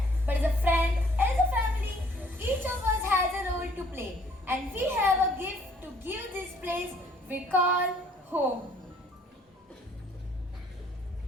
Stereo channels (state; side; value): normal; both; correlation 0.60